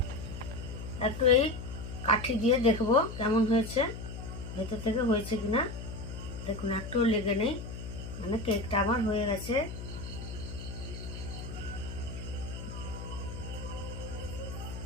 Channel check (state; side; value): noise; left; hum, 9 dB below the sound